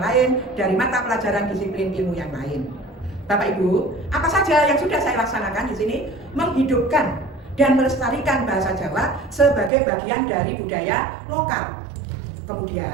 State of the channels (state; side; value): drops out; left; at 9.7 s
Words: lain dari mata pelajaran disiplin ilmu yang lain. Bapak Ibu, apa saja yang sudah saya laksanakan di sini? Menghidupkan dan melestarikan bahasa Jawa sebagai bagian dari budaya lokal.